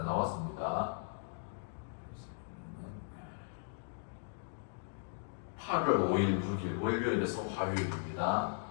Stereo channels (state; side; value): silent; right; digital silence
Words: 나왔습니다. 8월 5일, 6일 월요일에서 화요일입니다.